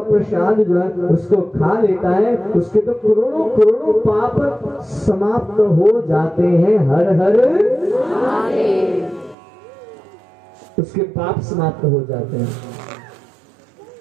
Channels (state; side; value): drops out; left; at 9.3 s